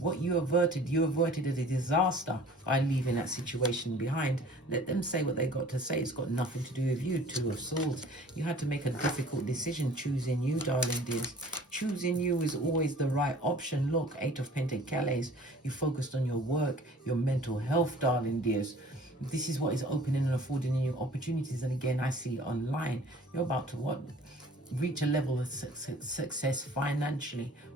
you averted. You averted a disaster by leaving that situation behind. Let them say what they got to say. It's got nothing to do with you. Two of Swords. You had to make a difficult decision choosing you, darling dears. Choosing you is always the right option. Look, Eight of Pentacles. You focused on your work, your mental health, darling dears. This is what is opening and affording you opportunities. And again, I see online. You're about to reach a level of success financially,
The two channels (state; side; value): normal; both; correlation 0.49